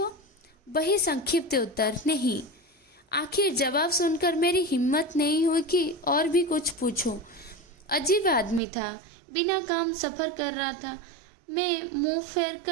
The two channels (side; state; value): left; drops out; at 8.6 s